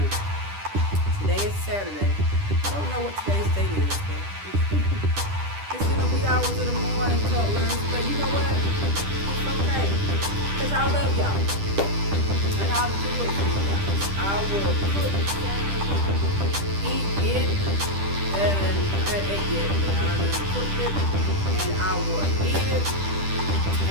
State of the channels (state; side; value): late; left; 10 ms